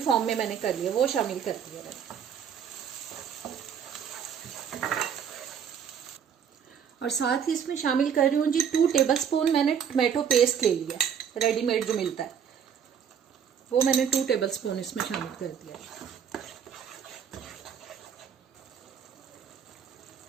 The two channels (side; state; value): left; quieter; 7.9 dB